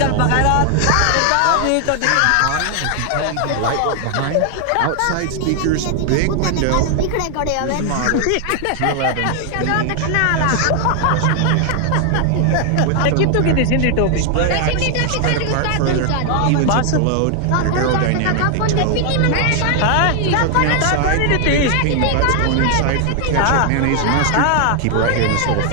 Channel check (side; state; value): both; different; correlation 0.00